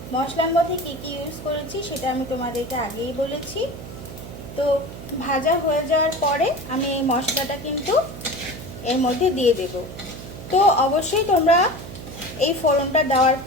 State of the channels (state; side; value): noise; right; hum, 12 dB below the sound